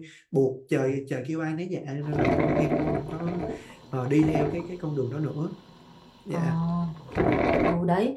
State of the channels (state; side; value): identical; both; correlation 1.00